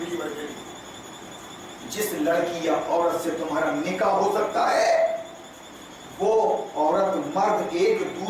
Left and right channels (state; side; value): identical; both; correlation 1.00